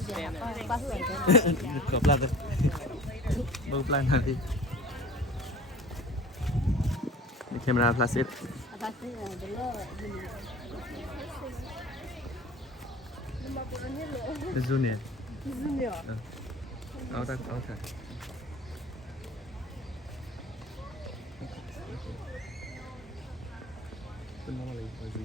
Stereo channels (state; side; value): normal; both; correlation 0.43